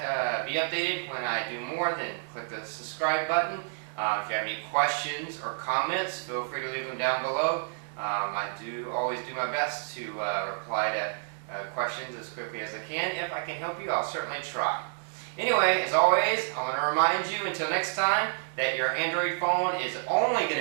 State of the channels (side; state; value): left; silent; 58 dB below the other